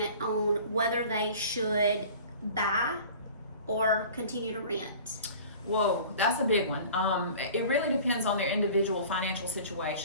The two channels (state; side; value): inverted; both; correlation -0.43